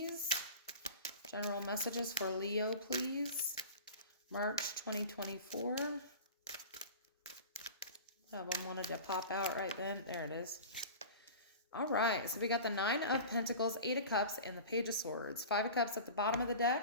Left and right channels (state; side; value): inverted; both; correlation -0.35